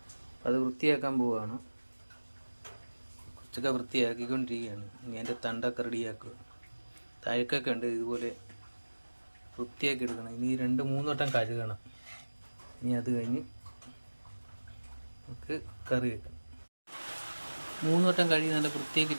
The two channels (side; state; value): both; inverted; correlation -1.00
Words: അത് വൃത്തിയാക്കാൻ പോവുകയാണ്. കുറച്ചൊക്കെ വൃത്തിയാക്കിക്കൊണ്ടിരിക്കുകയാണ്. ഇനി അതിൻ്റെ തണ്ടൊക്കെ റെഡിയാക്കുക. തഴക്കൊക്കെ ഉണ്ട്, ഇതുപോലെ വൃത്തിയാക്കി എടുക്കണം. ഇനി 2-3 വട്ടം കഴുകണം. ഇനി അത് കഴിഞ്ഞ് നമുക്ക് കറി വെക്കണം. 3 വട്ടം കഴുകി നല്ല വൃത്തിയാക്കി